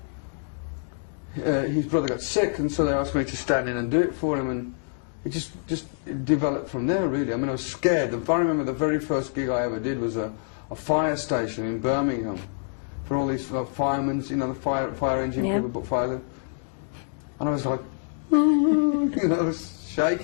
his brother got sick, and so they asked me to stand in and do it for him, and it just developed from there, really. I mean, I was scared. If I remember, the very first gig I ever did was a fire station in Birmingham for all these firemen, you know, the fire engine people put fire there. And I was like, you know, I was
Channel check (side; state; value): right; silent; digital silence